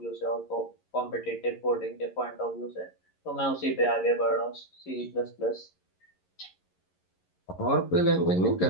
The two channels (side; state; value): right; late; 11 ms